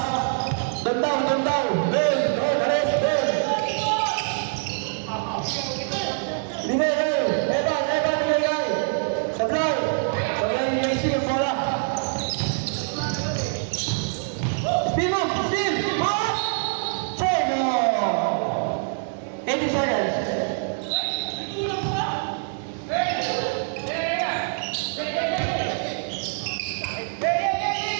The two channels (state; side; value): silent; left; digital silence